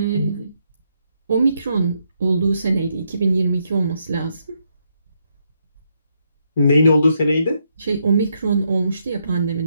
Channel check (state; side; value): inverted; both; correlation -0.78